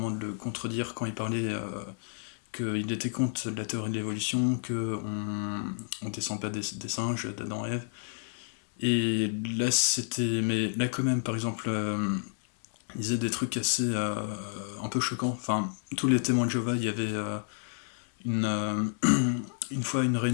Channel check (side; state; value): right; silent; 58 dB below the other